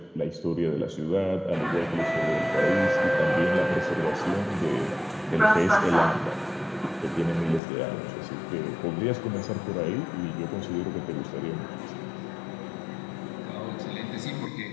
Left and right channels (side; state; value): right; drops out; at 7.6 s